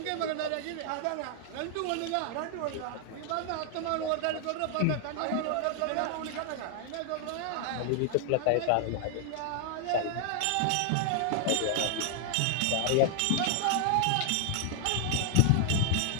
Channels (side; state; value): both; different; correlation 0.00